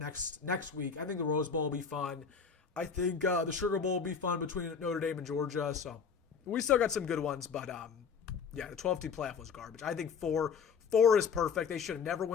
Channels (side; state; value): right; quieter; 6.1 dB